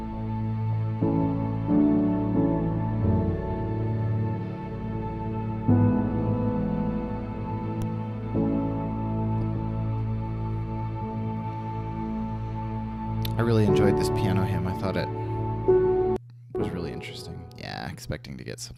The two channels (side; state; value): both; identical; correlation 1.00